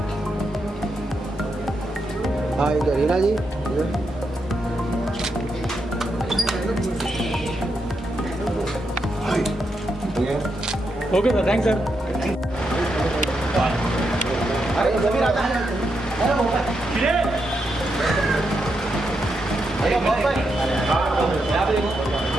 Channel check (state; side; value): normal; both; correlation 0.83